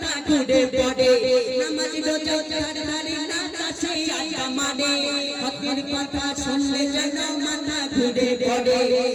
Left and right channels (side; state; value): both; identical; correlation 1.00